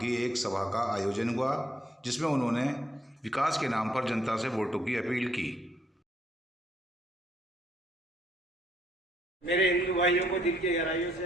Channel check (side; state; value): both; normal; correlation 0.70